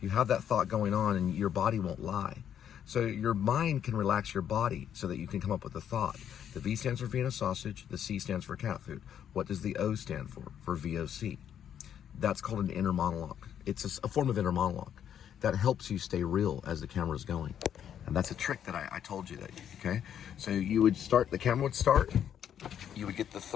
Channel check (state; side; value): quieter; right; 9.3 dB